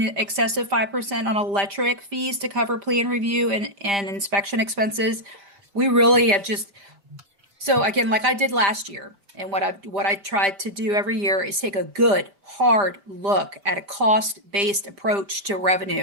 excess of 5% on electric fees to cover plan review and inspection expenses. We really have so again, like I did last year, and what I tried to do every year is take a good hard look at a cost-based approach to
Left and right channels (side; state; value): left; late; 5.0 ms